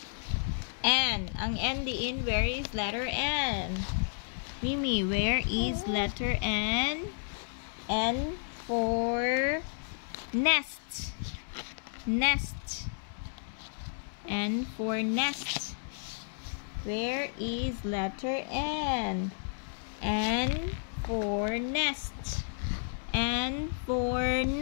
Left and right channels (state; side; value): silent; right; 56 dB below the other